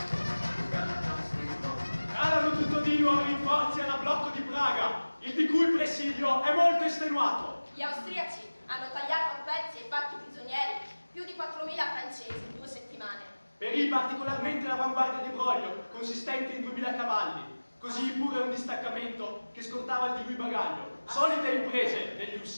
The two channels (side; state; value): both; inverted; correlation -1.00